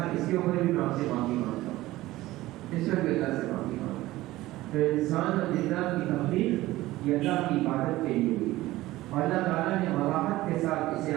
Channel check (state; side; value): quieter; left; 17.2 dB